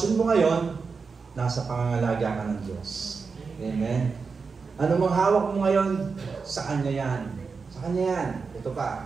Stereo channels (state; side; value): quieter; left; 5.0 dB